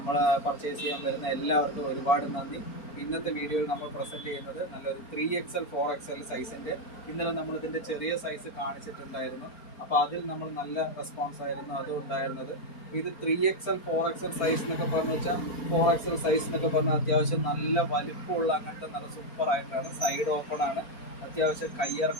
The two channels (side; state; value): right; late; 4.4 ms